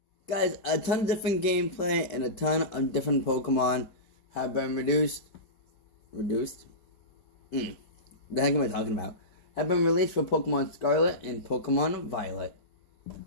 Guys, a ton of different gameplay and a ton of different Pokemon have been reduced. Reduced? The heck am I talking about? Have been released for Pokemon Scarlet and Pokemon Violet.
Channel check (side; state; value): right; late; 5.0 ms